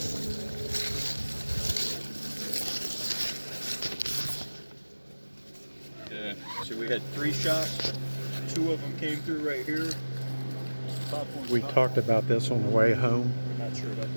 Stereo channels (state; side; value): inverted; both; correlation -1.00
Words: Yeah. So we had 3 shots. 2 of them came through right here. We talked about this on the way home. Not sure about